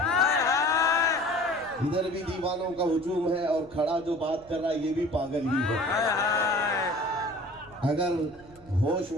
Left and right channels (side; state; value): right; noise; rumble, 23 dB below the sound